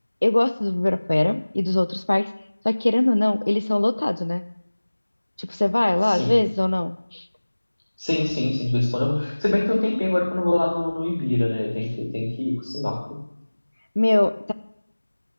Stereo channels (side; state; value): both; inverted; correlation -1.00